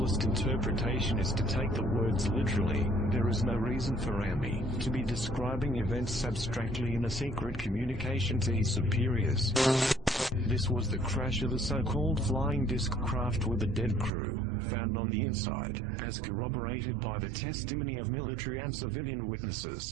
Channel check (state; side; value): drops out; left; at 14.1 s